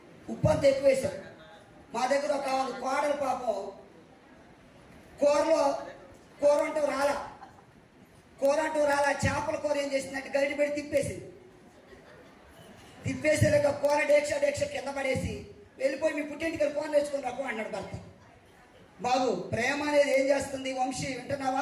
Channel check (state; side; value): identical; both; correlation 1.00